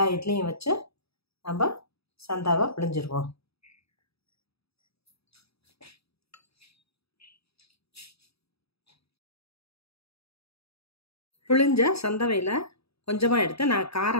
இட்லியும் வச்சு நம்ம சந்தாவை பிழிஞ்சிருவோம். பிழிஞ்ச சந்தவையில் கொஞ்சமாக எடுத்து நான்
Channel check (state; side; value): late; right; 0.77 ms